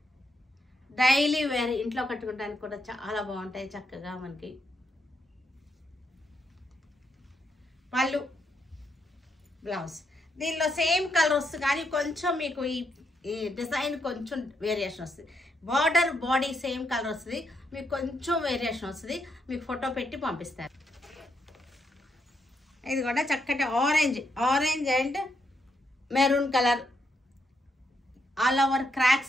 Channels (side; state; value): both; normal; correlation 0.79